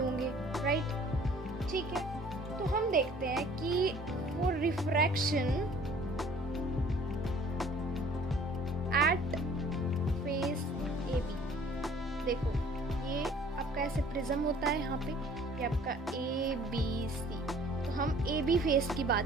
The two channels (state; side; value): normal; both; correlation 0.53